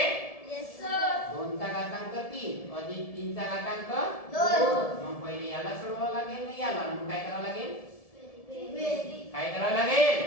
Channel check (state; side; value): late; right; 1.7 ms